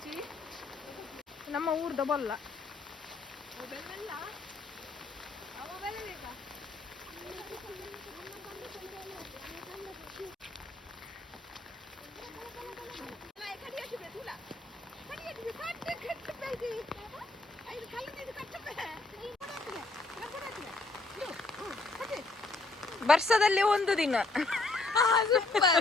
ನಮ್ಮ ಊರ್ದ ಬಲ್ಲ ವರ್ಷದಲ್ಲಿ ಒಂದು ದಿನ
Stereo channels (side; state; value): right; quieter; 3.3 dB